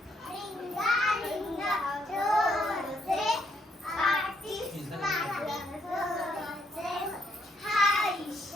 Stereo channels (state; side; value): normal; both; correlation 0.73